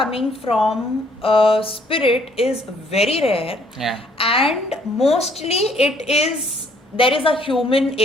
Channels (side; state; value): both; normal; correlation 0.64